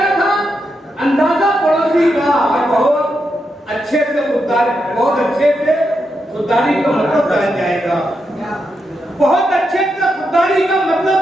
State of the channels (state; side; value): normal; both; correlation 0.84